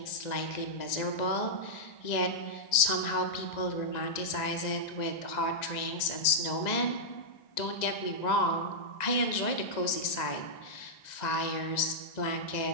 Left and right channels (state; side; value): late; right; 1.9 ms